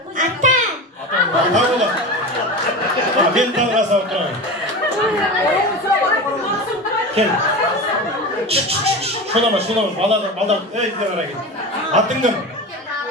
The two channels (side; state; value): both; normal; correlation 0.27